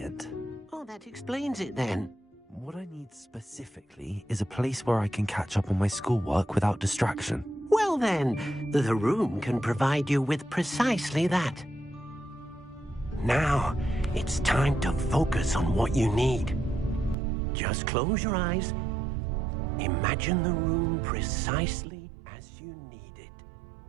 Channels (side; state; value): left; drops out; at 17.2 s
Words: Oh, that explains it then. What I need specifically is a place where I can catch up on my schoolwork without distraction. Well then, the room can provide you with precisely that. Now, it's time to focus on what you need. Just close your eyes. Imagine the room precisely as you need it.